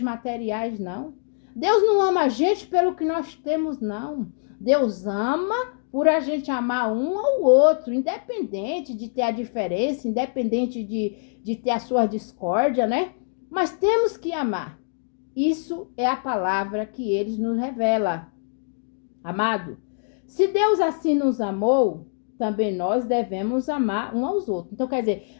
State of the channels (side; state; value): right; silent; digital silence